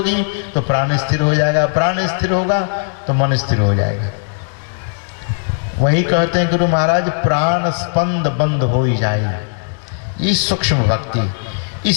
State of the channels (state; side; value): silent; right; digital silence